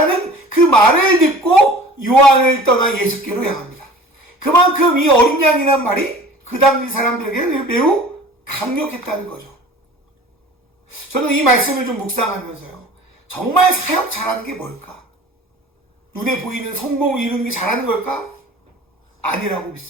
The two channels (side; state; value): both; normal; correlation 0.43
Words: 그 말을 듣고 요한을 떠나 예수께로 향합니다. 그만큼 이 어린 양이란 말이 그 당시 사람들에게는 매우 강력했다는 거죠. 저는 이 말씀을 좀 묵상하면서요, 정말 사역 잘하는 게 뭘까? 눈에 보이는 성공을 이루는 게 잘하는 걸까? 아니라고